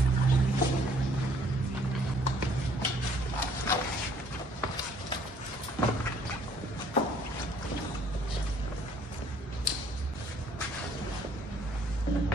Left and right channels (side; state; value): both; normal; correlation 0.61